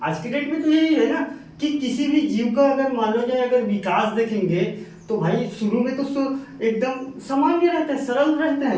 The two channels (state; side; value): identical; both; correlation 1.00